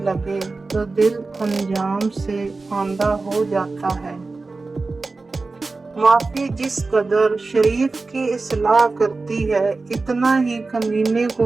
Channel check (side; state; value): left; quieter; 3.7 dB